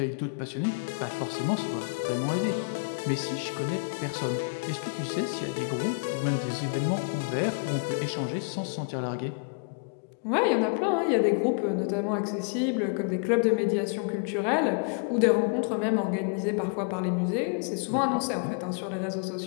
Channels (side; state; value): right; quieter; 36.3 dB